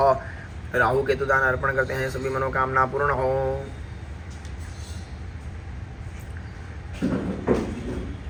राहु केतु दान अर्पण करते हैं, सभी मनोकामना पूर्ण हो।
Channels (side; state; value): both; identical; correlation 1.00